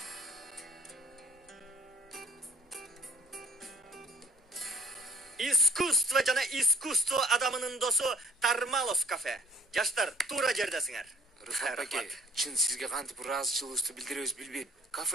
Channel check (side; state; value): both; normal; correlation 0.56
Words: Искусство жана искусство адамынын досу Тармалов кафе. Жаштар, туура жердесиңер. Рыфат аке, чын сизге кантип ыраазычылыгыбызды билдиребиз билбейм.